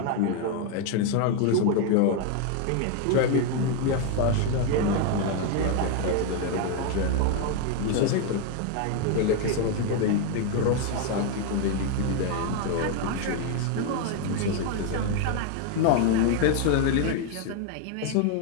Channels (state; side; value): different; both; correlation 0.01